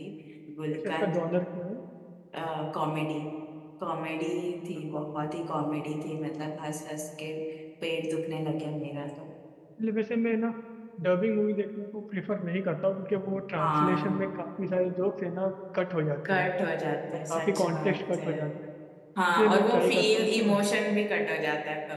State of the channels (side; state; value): both; identical; correlation 1.00